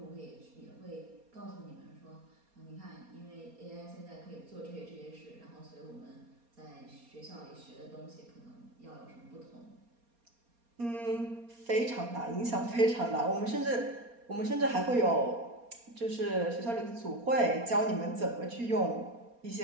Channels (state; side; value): late; left; 4.3 ms